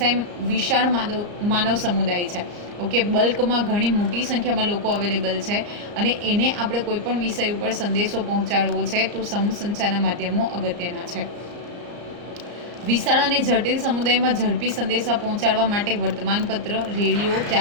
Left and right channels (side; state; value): left; late; 34 ms